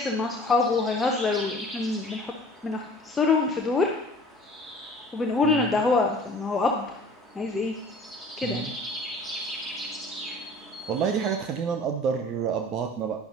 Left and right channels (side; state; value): both; normal; correlation 0.47